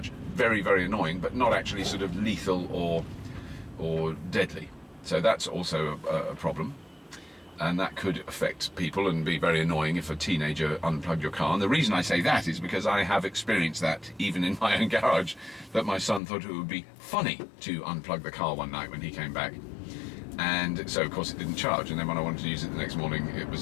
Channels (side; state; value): right; drops out; at 16.2 s